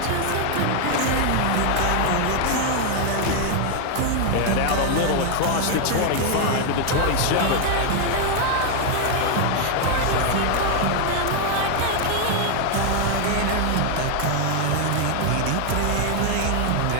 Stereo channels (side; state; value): both; different; correlation 0.00